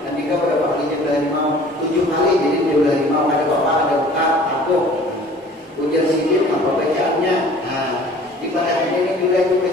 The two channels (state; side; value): normal; both; correlation 0.49